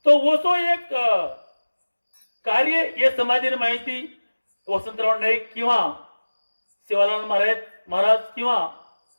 तो वो तो एक कार्य ये समाधीने माहिती वसंतराव नाईक किंवा सेवालाल महाराज किंवा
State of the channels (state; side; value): inverted; both; correlation -1.00